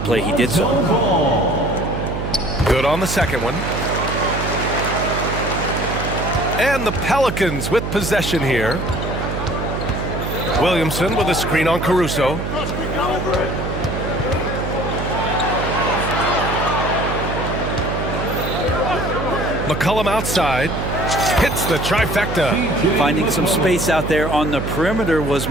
play, he did so. Good on the second one. And the Pelicans with possession here. Williamson with a screen on Caruso. McCollum outside. Hits the trifecta. Finding some space out there on the perimeter was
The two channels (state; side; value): noise; right; hum, 4 dB below the sound